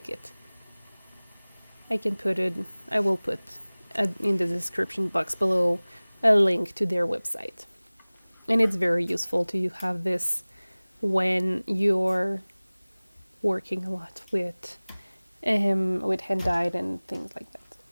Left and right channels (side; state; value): both; inverted; correlation -1.00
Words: it. I will put in the description box below a link to their website. And it's very useful to have this when you're working a lot with hand dyed and things like that.